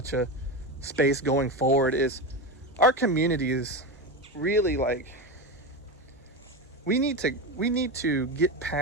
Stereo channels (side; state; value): both; normal; correlation 0.18